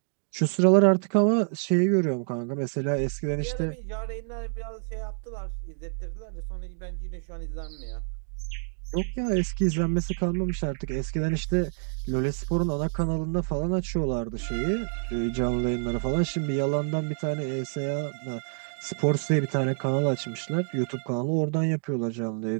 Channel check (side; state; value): left; silent; digital silence